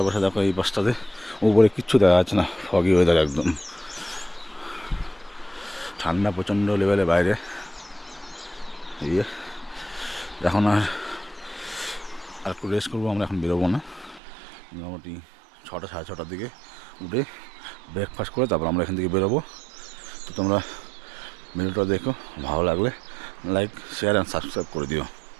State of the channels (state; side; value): drops out; left; at 14.2 s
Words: দেখো এই পাশটাতে উপরে কিচ্ছু দেখা যাচ্ছে না, ফগি ওয়েদার একদম। ঠান্ডা প্রচণ্ড লেভেলে বাইরে। এই এখন আর একটু রেস্ট করবো আমরা, এখন বেরোবো না। মোটামুটি 6টা সাড়ে 6টার দিকে উঠে ব্রেকফাস্ট করে তারপর আমরা এখান থেকে বেরোবো। তো তোমরা ভিডিওটা দেখো, ভালো লাগলে লাইক, শেয়ার অ্যান্ড সাবস্ক্রাইব করে দিও।